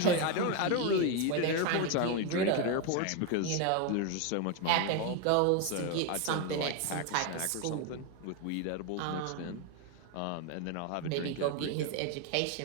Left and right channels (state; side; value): different; both; correlation 0.02